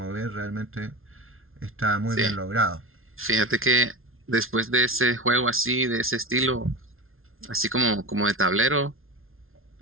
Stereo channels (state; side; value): late; left; 0.61 ms